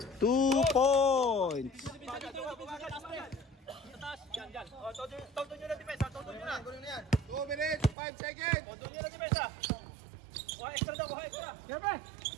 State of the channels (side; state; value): left; drops out; at 8.0 s